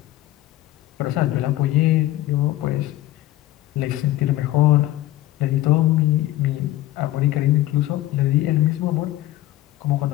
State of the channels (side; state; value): right; quieter; 15.1 dB